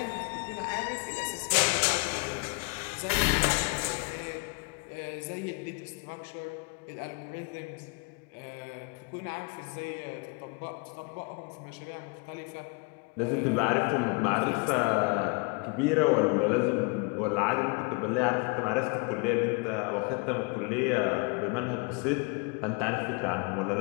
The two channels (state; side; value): quieter; right; 30.7 dB